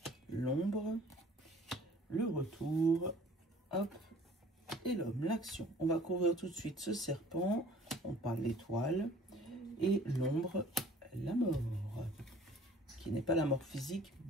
l'ombre, le retour, hop, et l'homme, l'action. On va couvrir tout de suite ce serpent, on parle l'étoile, et l'ombre, la mort, qui n'est pas la mort physique,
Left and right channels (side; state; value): both; normal; correlation 0.51